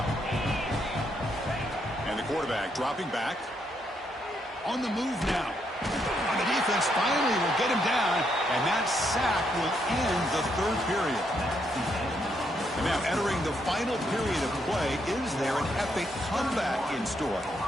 And the quarterback dropping back. On the move now. And the defense finally will get him down, and that sack will end the third period. And now entering the final period of play, is there an epic comeback in store?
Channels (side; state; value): both; normal; correlation 0.76